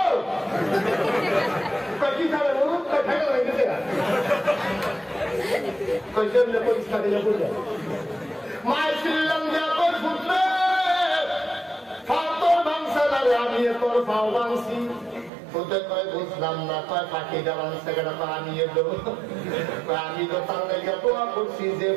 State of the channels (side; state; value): left; drops out; at 15.3 s